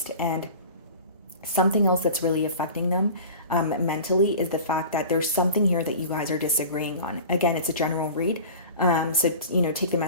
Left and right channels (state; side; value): inverted; both; correlation -0.38